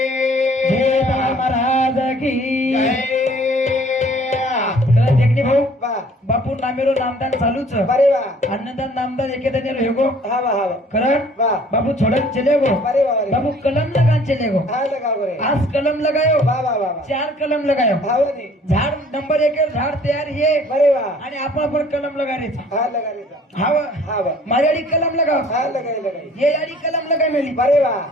जय महाराज की जय देखणे भाऊ बा बापू नामेरो नामदान चालूच बरे बा अन्नदान नामदान एकेदाने रहेगो हा बा कारण बा बाबू छोड़न चले गो बरे बा बाबू कलम लगान चले गो. हा लगा बरे आज कलम लगायो बा बा बा 4 कलम लगायो. भावनी झाड नंबर 1 झाड तयार है बरे बा आणि आपण कलम लगायचा. हा लगा रे हाव हा बा मारेडी कलम लगाव. हा लगाई ये याडी कलम लगाय मेली. बरे बा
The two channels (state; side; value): normal; both; correlation 0.55